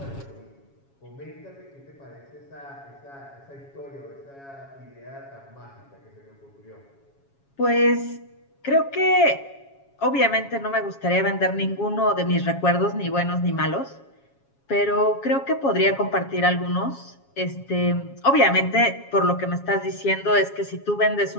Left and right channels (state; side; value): late; right; 7.3 ms